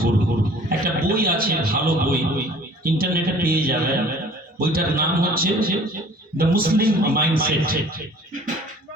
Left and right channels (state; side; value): normal; both; correlation 0.50